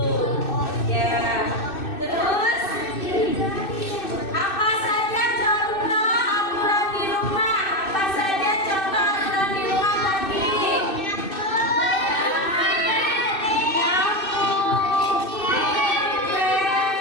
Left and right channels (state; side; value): late; right; 2.6 ms